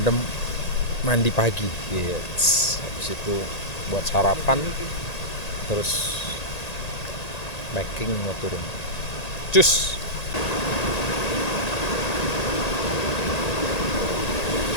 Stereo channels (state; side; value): late; right; 1.9 ms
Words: mandi pagi. Yes. Habis itu buat sarapan, terus packing mau turun. Cus.